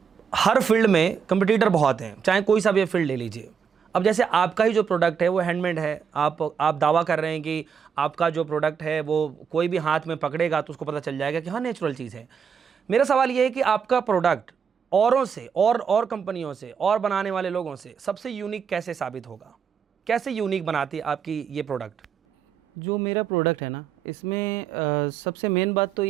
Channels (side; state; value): left; quieter; 6.9 dB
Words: हर फील्ड में कंपटीटर बहुत हैं, चाहे कोई सा भी फील्ड ले लीजिए। अब जैसे आपका ही जो प्रोडक्ट है वो हैंडमेड है, आप दावा कर रहे हैं कि आपका जो प्रोडक्ट है वो कोई भी हाथ में पकड़ेगा तो उसको पता चल जाएगा कि हाँ नेचुरल चीज़ है। मेरा सवाल ये है कि आपका प्रोडक्ट औरों से और कंपनियों से और बनाने वाले लोगों से सबसे यूनिक कैसे साबित होगा? कैसे यूनिक बनाती है आपकी ये प्रोडक्ट? जो मेरा प्रोडक्ट है ना, इसमें सबसे मेन बात तो